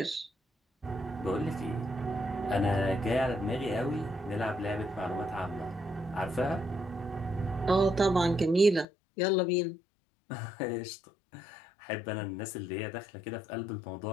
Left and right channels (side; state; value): right; drops out; at 8.8 s